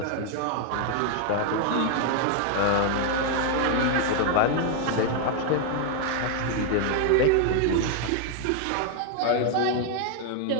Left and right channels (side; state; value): both; different; correlation 0.00